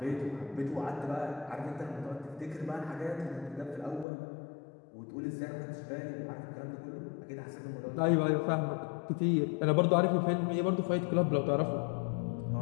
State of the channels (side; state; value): right; drops out; at 4.0 s